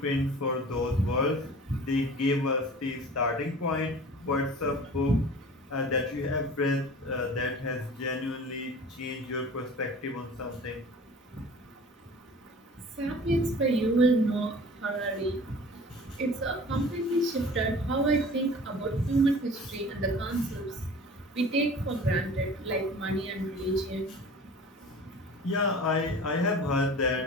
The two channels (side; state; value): both; normal; correlation 0.42